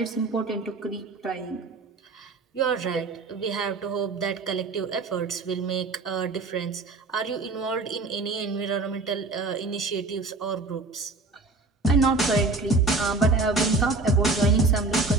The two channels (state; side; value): quieter; left; 3.5 dB